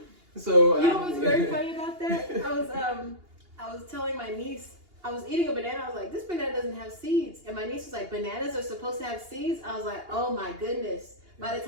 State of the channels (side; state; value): left; late; 2.8 ms